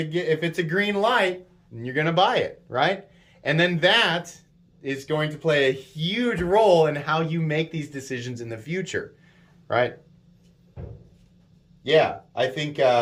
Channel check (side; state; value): both; identical; correlation 1.00